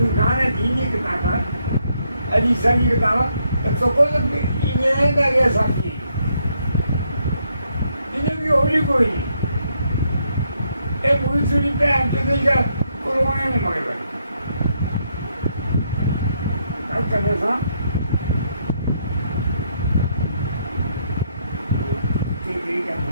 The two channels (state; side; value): inverted; both; correlation -0.75